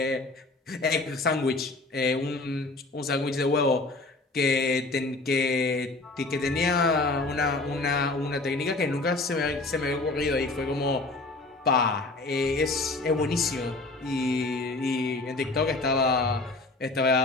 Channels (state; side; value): quieter; right; 3.2 dB